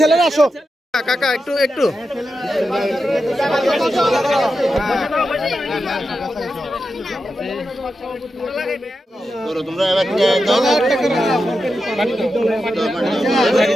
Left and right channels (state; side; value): normal; both; correlation 0.89